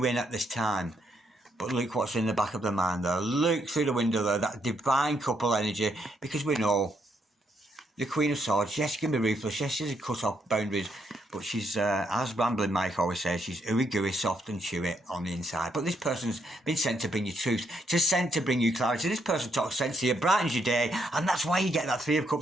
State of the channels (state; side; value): normal; both; correlation 0.76